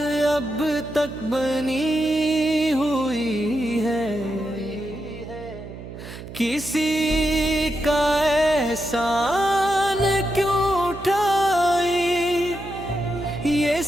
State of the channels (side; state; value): right; noise; hum, 13 dB below the sound